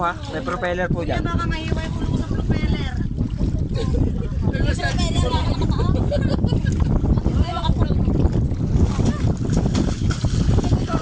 ha. May propeller po dyan. Baka mahiway ko sa propeller.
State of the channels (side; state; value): both; identical; correlation 1.00